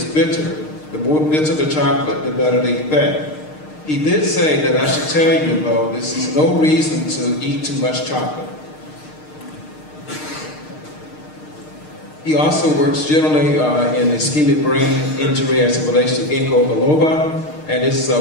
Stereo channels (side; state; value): right; late; 6.5 ms